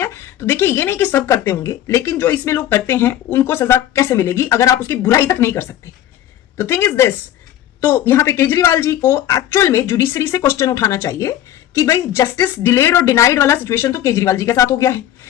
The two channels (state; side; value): quieter; right; 12.1 dB